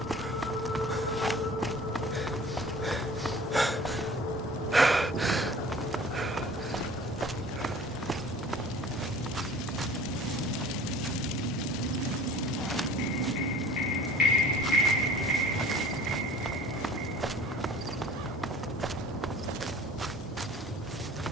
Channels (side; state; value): both; normal; correlation 0.46